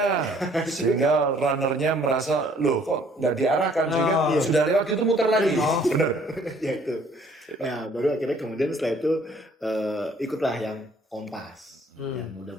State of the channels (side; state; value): both; normal; correlation 0.60